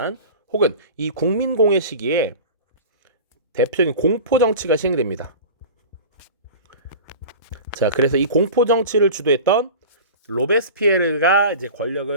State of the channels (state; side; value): inverted; both; correlation -0.35